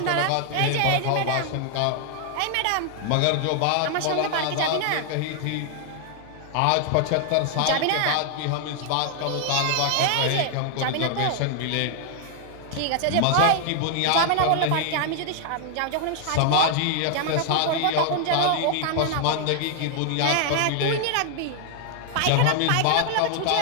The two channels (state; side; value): different; both; correlation 0.00